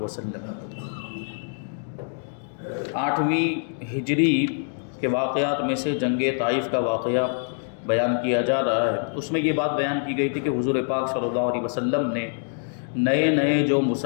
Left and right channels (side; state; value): right; silent; 62 dB below the other